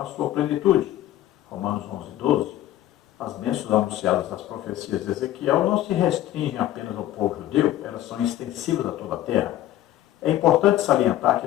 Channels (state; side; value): quieter; right; 13.6 dB